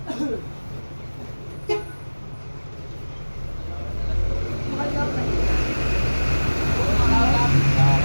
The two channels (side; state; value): both; inverted; correlation -1.00